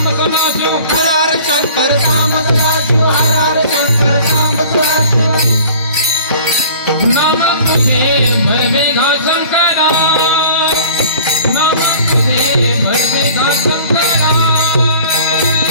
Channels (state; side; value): inverted; both; correlation -0.47